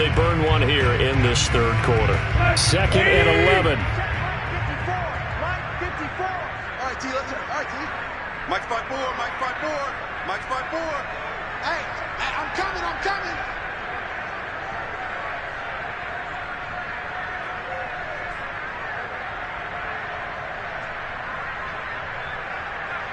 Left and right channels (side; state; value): both; identical; correlation 1.00